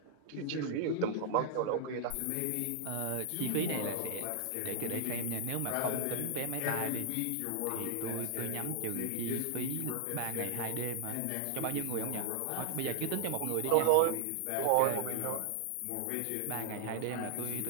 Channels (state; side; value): different; both; correlation -0.01